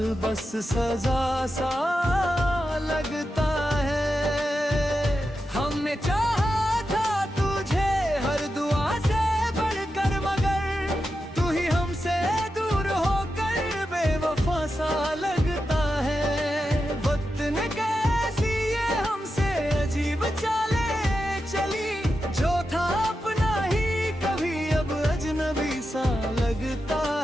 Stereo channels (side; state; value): both; normal; correlation 0.89